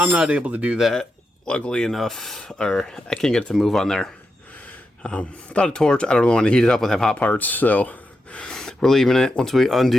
not able to do that, luckily enough, or I can't get it to move on there. Without a torch, I don't really want to heat it up with hot parts, so we're leaving it. Once we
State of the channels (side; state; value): both; normal; correlation 0.87